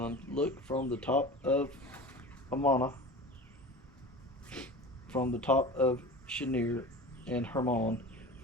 Look from the top of Amana, from the top of Shinir and Hermon,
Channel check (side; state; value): both; normal; correlation 0.34